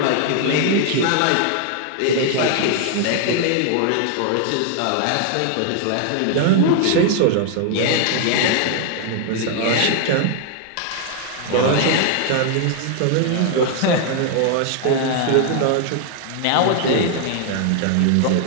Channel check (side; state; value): both; different; correlation 0.00